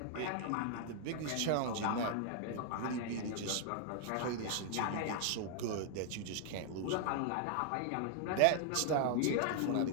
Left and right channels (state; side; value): different; both; correlation 0.00